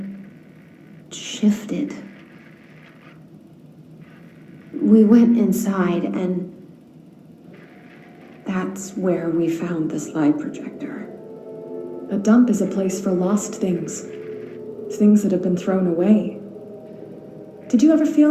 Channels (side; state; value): both; identical; correlation 1.00